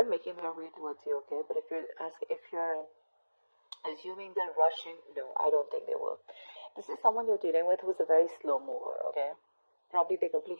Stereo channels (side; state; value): both; inverted; correlation -1.00